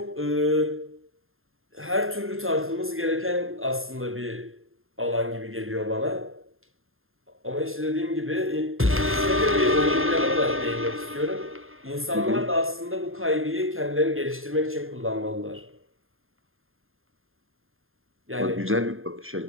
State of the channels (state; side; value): late; left; 0.61 ms